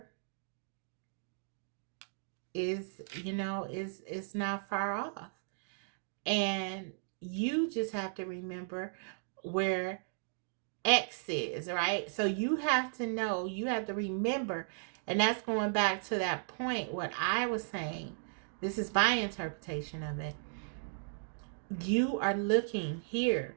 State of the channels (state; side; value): silent; left; digital silence